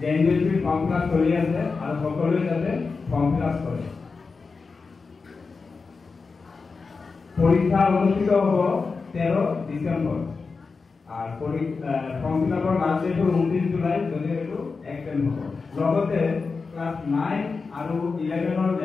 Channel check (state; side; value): quieter; right; 4.5 dB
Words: জেএনবিএছপি ফৰ্ম ফিল আপ চলি আছে আৰু সকলোৱে যাতে ফৰ্ম ফিল আপ কৰে। পৰীক্ষা অনুষ্ঠিত হ'ব 13 ডিচেম্বৰ আৰ ফৰ্ম ফিল আপৰ লাষ্ট ডেট হ'ল 29 জুলাই। যদি এইটো এক্সটেণ্ড হ'ব, লগতে ক্লাছ 9 আৰু 11ৰ